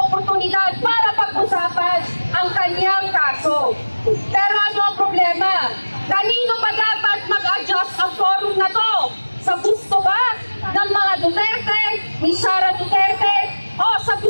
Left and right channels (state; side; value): inverted; both; correlation -1.00